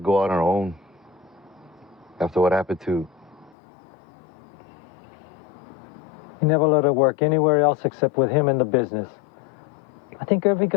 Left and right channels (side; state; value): right; drops out; at 3.6 s